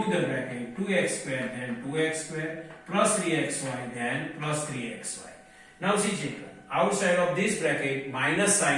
the bracket, 2x square then 2x square plus 3xy then plus 3xy. Now see children, outside of this bracket minus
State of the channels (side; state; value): both; identical; correlation 1.00